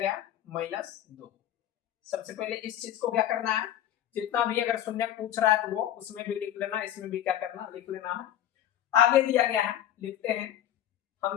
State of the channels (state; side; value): quieter; right; 11.6 dB